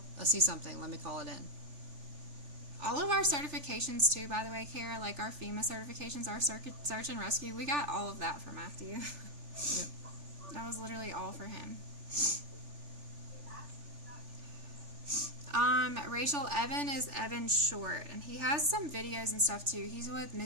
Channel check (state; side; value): late; left; 3.4 ms